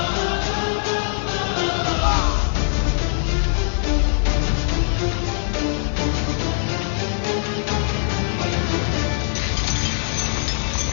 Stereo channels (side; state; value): right; silent; digital silence